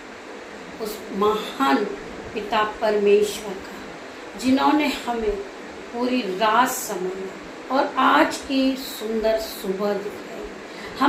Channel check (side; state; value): both; identical; correlation 1.00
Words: उस महान पिता परमेश्वर का, जिन्होंने हमें पूरी रात संभाला और आज की सुंदर सुबह दिखाई।